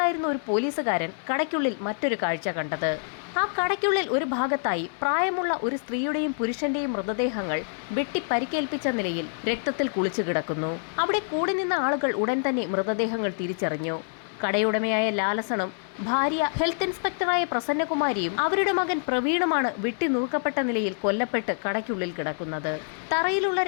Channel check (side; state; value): right; silent; 61 dB below the other